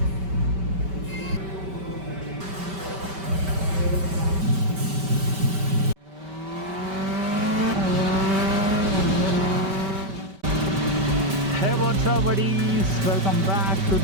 Hey, what's up buddies? Welcome back to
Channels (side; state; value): left; late; 5.2 ms